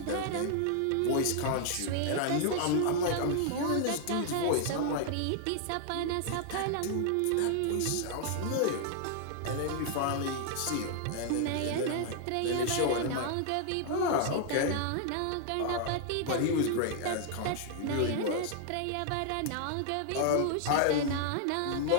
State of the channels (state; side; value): different; both; correlation 0.00